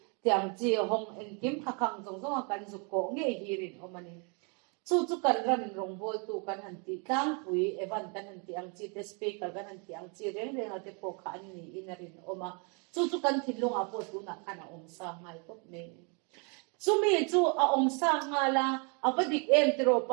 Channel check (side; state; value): left; quieter; 35.5 dB